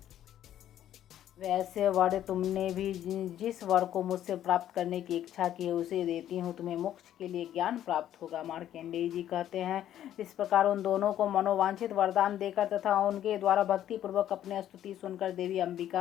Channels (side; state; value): right; quieter; 11.5 dB